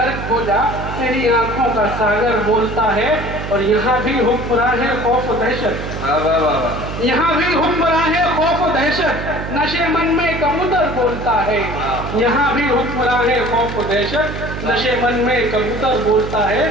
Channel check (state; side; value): noise; right; hum, 7 dB below the sound